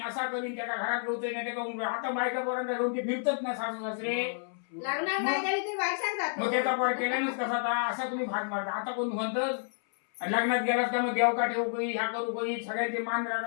असा करीन त्याला घरात घेऊते नाही त्याचा आता बायका पर्यंत घेऊन ते फिरतच ना सासू सासरे मग त्याचा पर केल्यानंच कसा था असा तुम्ही भाग मारता आता कोण म्हणतच लग्नात गेलास का मग देवका ठेवू काही ह्या करू काही सगळ्यांचे मान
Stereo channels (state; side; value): silent; right; 58 dB below the other